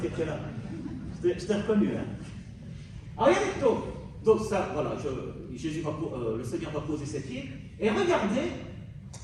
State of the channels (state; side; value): identical; both; correlation 1.00